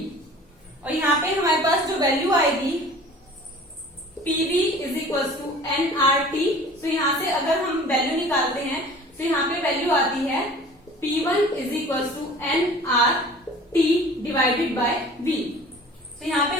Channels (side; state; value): both; normal; correlation 0.45